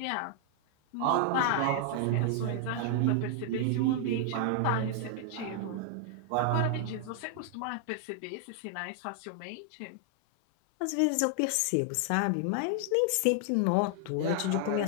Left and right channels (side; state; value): both; different; correlation 0.00